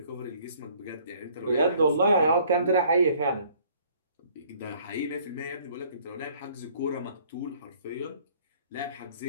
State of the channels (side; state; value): both; inverted; correlation -0.58